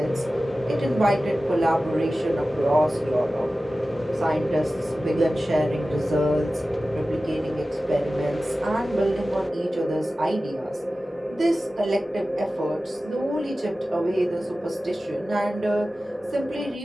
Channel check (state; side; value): normal; both; correlation 0.95